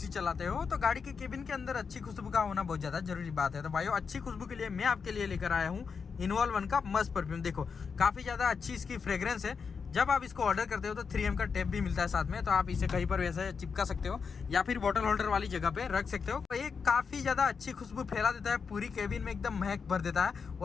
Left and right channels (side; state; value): right; quieter; 5.7 dB